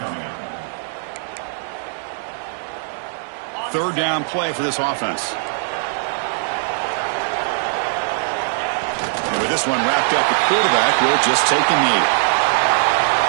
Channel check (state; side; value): silent; left; digital silence